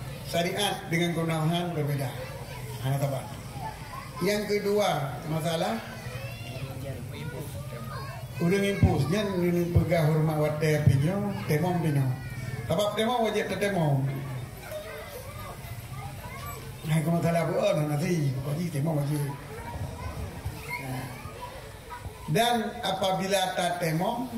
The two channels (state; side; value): identical; both; correlation 1.00